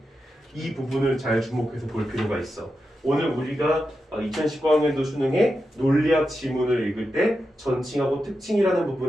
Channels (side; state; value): both; normal; correlation 0.89